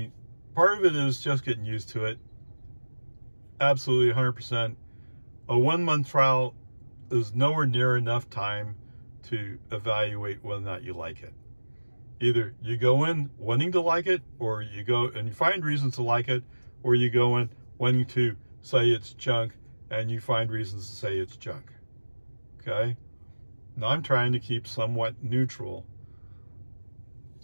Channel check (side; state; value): both; inverted; correlation -1.00